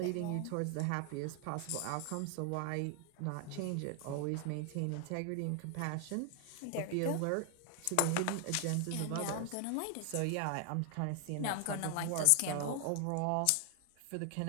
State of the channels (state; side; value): different; both; correlation 0.00